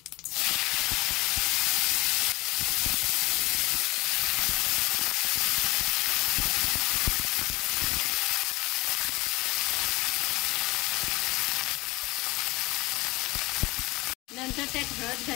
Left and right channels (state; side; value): quieter; right; 21.8 dB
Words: नंतर त्यात हळद